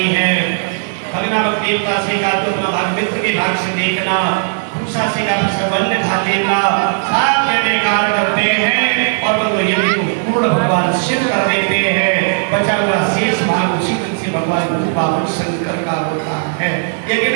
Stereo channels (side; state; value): left; silent; digital silence